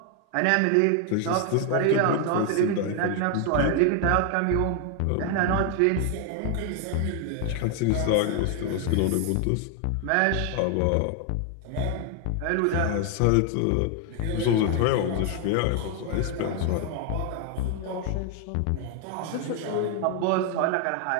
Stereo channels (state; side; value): different; both; correlation 0.00